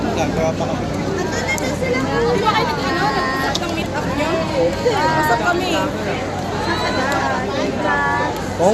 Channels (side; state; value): both; identical; correlation 1.00